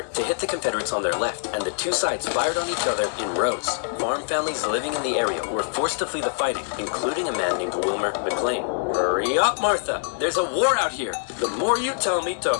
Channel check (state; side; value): silent; right; digital silence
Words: to hit the Confederates on their left, and the two sides fired on each other in rows. Farm families living in the area were forced to flee the fighting, including a man named Wilmer McLean. Hurry up, Martha! There's a war out here. The more you tell me to